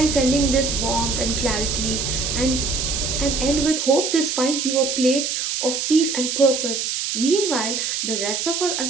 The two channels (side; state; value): right; noise; hiss, 2 dB below the sound